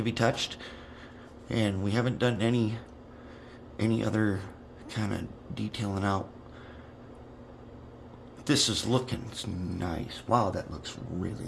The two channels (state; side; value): identical; both; correlation 1.00